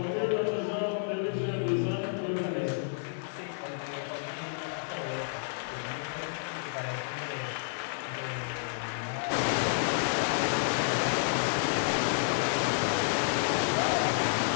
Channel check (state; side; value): silent; right; 55 dB below the other